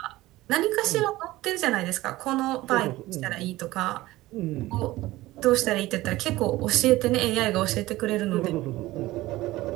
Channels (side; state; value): left; quieter; 17.8 dB